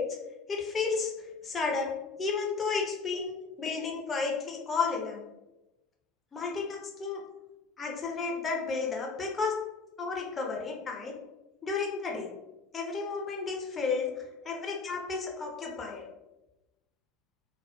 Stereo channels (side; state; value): right; quieter; 4.3 dB